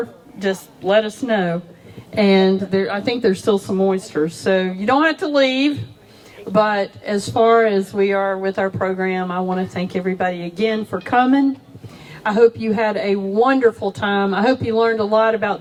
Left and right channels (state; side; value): identical; both; correlation 1.00